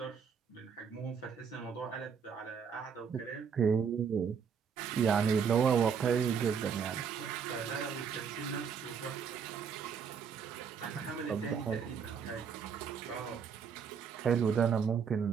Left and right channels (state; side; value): quieter; left; 6.7 dB